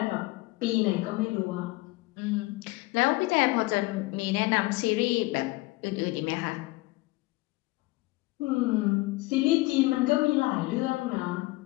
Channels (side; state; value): right; quieter; 21.6 dB